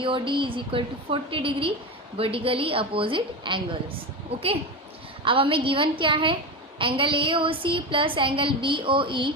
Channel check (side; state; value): both; normal; correlation 0.20